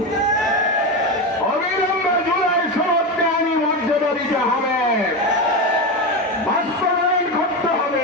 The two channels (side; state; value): both; normal; correlation 0.17